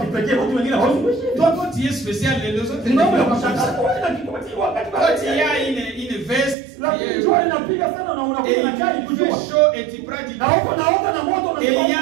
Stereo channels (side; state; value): left; drops out; at 6.6 s